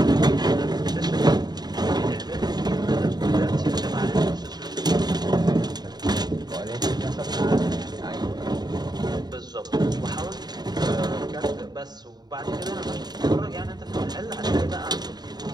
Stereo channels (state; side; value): late; left; 0.20 ms